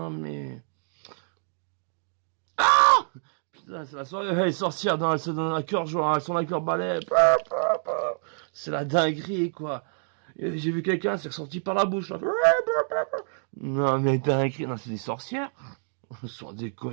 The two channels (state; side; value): silent; left; digital silence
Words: mais. Putain, c'est la soirée. Elle est sorcière. Non, elle se donne un cœur joie. Elles sont avec leur balai. C'est la dinguerie quoi. J'ai vu quelqu'un, c'est ressorti par la bouche. Là. Non mais dinguerie. Non, c'est des sorcières. Sans